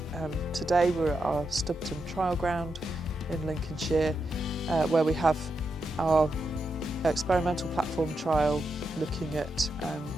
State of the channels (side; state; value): both; normal; correlation 0.85